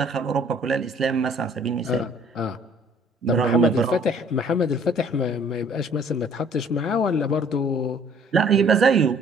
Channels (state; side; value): normal; both; correlation 0.57